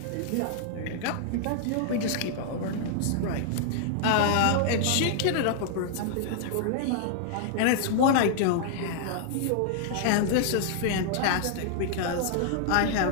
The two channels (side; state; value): both; different; correlation -0.01